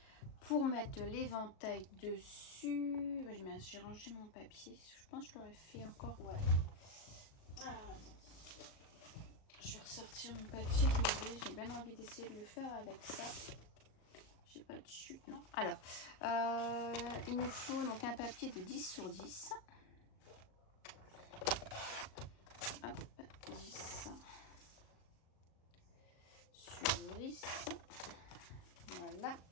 pour mettre l'éventail dessus, j'ai rangé mon papier. Je pense que je l'aurais fait encore. Ouais. Ah, je vais ressortir mon papier. J'ai bien envie d'essayer de le faire avec ça. J'ai pas de chute, non. Alors, il nous faut donc un papier de 10 sur 10. Hop, 10 sur 10. Voilà.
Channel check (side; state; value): right; late; 37 ms